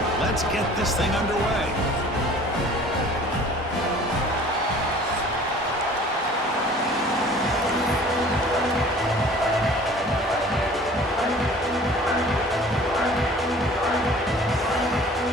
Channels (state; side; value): normal; both; correlation 0.48